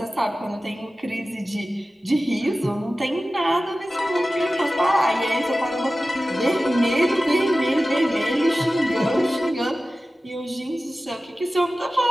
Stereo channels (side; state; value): both; normal; correlation 0.95